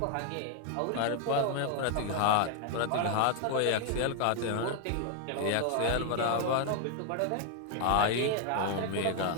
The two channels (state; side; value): different; both; correlation 0.00